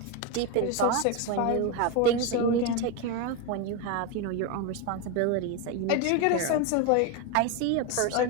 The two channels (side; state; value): both; different; correlation 0.03